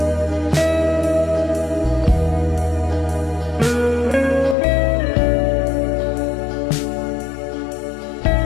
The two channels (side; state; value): right; drops out; at 4.5 s